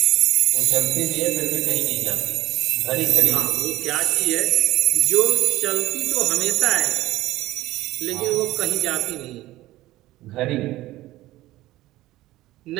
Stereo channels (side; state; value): left; quieter; 16.7 dB